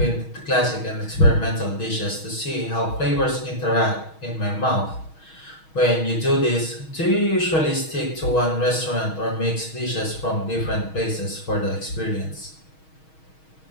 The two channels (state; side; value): late; right; 6.3 ms